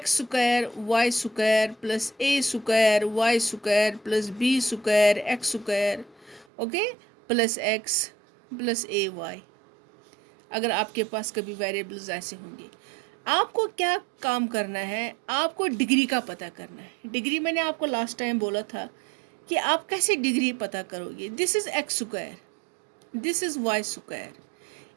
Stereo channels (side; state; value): left; drops out; at 6.5 s